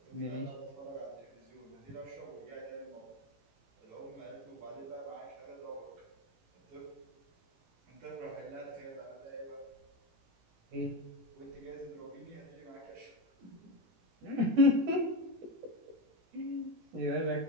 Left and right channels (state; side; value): late; left; 18 ms